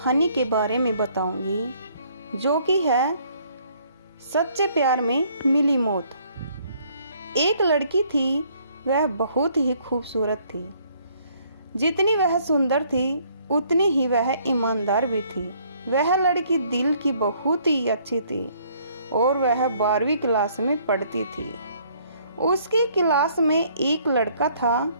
के बारे में बताऊंगी जो कि है सच्चे प्यार में मिली मौत। एक लड़की थी, वह बहुत ही खूबसूरत थी। जितनी वह सुंदर थी उतनी ही वह ईमानदार भी थी। वह लड़की दिल की बहुत ही अच्छी थी और वह 12वीं क्लास में पढ़ती थी। उसकी क्लास में एक लड़का था,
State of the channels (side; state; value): both; inverted; correlation -0.63